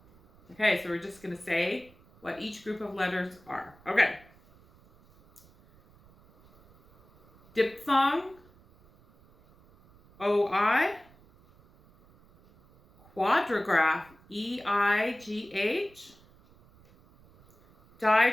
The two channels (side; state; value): right; noise; rumble, 28 dB below the sound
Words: Okay, so we're just going to say what each group of letters are. Okay. Diphthong, O-I. Quadrigraph, E-I-G-H.